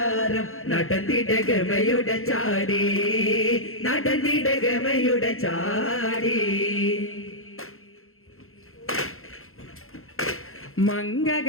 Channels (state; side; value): late; right; 0.62 ms